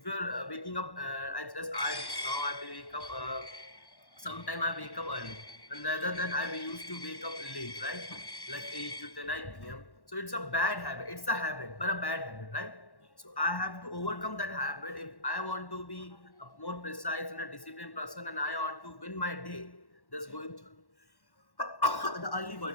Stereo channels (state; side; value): late; right; 1.1 ms